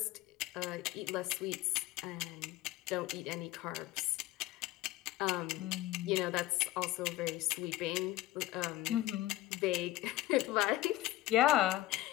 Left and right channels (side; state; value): right; quieter; 16.1 dB